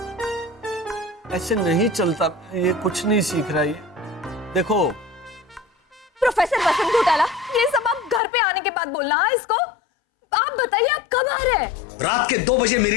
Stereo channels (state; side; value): drops out; right; at 8.2 s